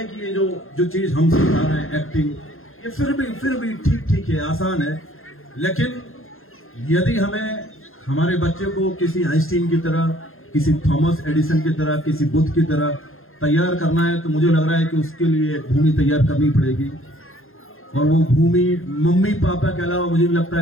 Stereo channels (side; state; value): right; late; 0.61 ms